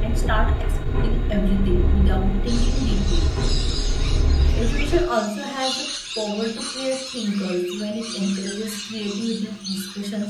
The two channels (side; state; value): both; identical; correlation 1.00